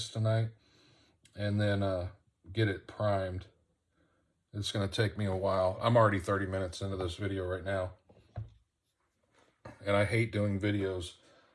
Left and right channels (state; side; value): identical; both; correlation 1.00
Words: tonight and then get it primed. It's going to take me a while. I'm already 30 minutes into this video right now. And I hate doing videos